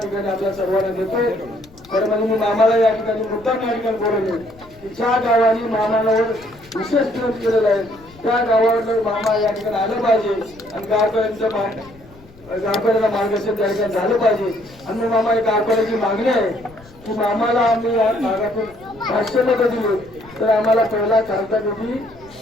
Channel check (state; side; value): noise; left; rumble, 24 dB below the sound